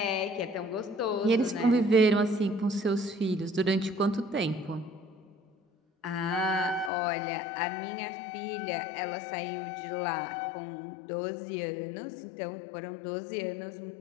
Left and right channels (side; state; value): right; drops out; at 6.9 s